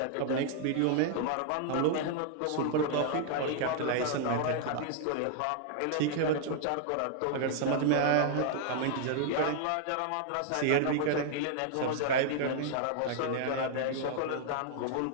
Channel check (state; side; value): different; both; correlation 0.00